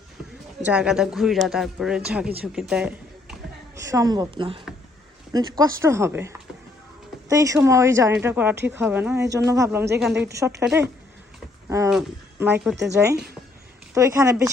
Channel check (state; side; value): quieter; right; 3.1 dB